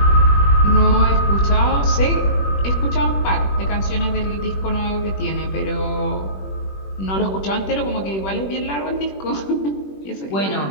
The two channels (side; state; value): right; late; 21 ms